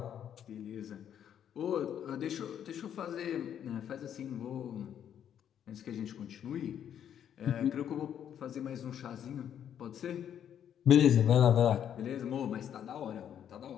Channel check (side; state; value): right; quieter; 9.4 dB